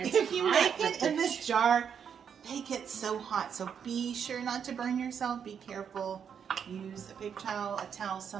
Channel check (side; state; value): left; quieter; 7.6 dB